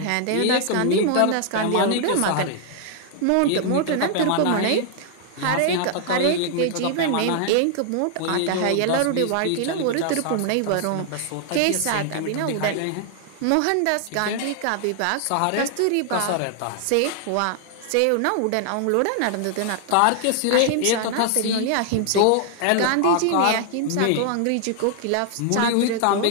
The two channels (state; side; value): different; both; correlation 0.00